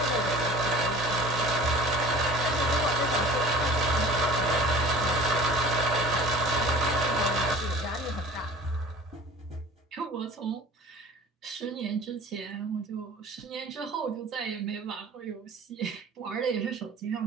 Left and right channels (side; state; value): both; normal; correlation 0.43